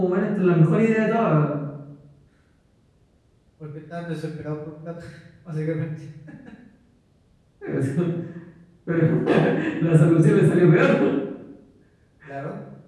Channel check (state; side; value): identical; both; correlation 1.00